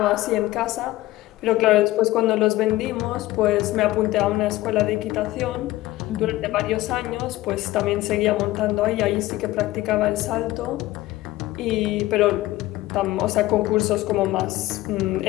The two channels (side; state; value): right; quieter; 17.1 dB